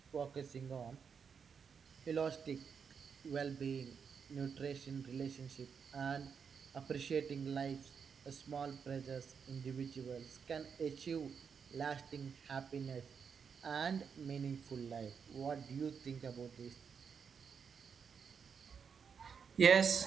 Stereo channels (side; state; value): left; quieter; 6.5 dB